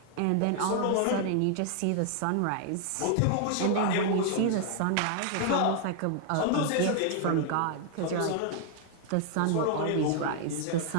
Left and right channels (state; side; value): different; both; correlation 0.00